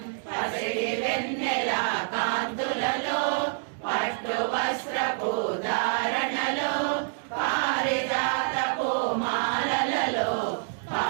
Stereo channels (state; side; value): silent; left; digital silence